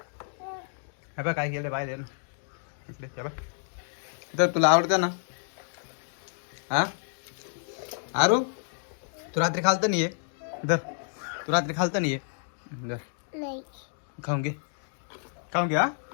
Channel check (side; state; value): right; silent; digital silence